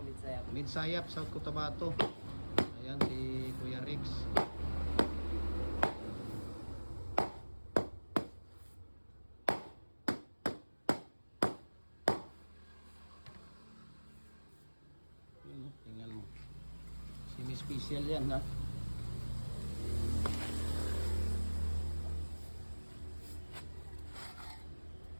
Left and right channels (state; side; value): inverted; both; correlation -1.00